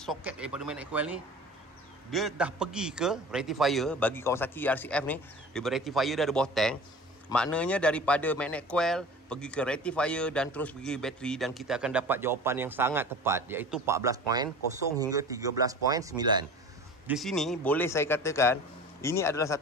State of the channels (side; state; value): both; normal; correlation 0.39